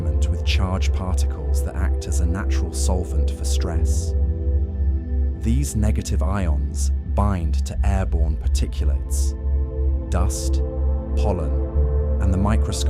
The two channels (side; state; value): both; identical; correlation 1.00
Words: with charged particles that act as a natural solvent for stress. These negative ions bind to airborne particulates, dust, pollen, and the